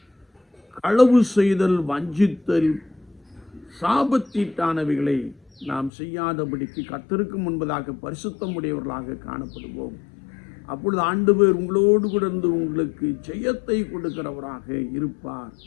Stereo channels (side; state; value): right; drops out; at 5.9 s